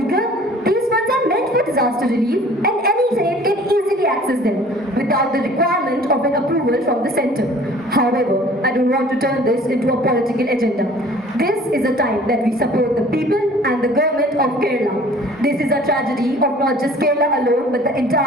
these funds are meant for disaster relief, and any state can easily access them without the requirement of an approval from the centre. However, I don't want to turn this into a political agenda. This is a time that we support the people and the government of Kerala. This is a tragedy of not just Kerala alone, but the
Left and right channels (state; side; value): normal; both; correlation 0.50